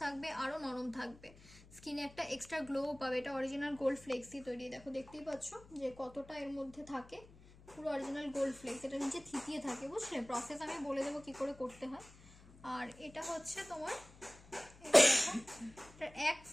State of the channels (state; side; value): noise; left; hum, 22 dB below the sound